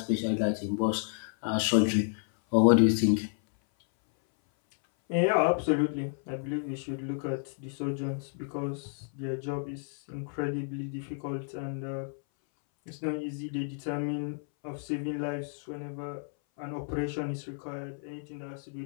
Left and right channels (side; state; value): right; silent; 57 dB below the other